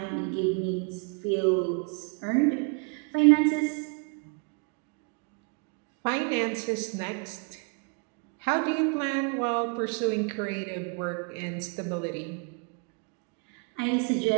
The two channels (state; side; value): quieter; left; 36.2 dB